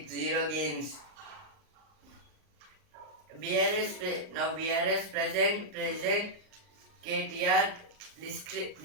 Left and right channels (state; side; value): late; left; 39 ms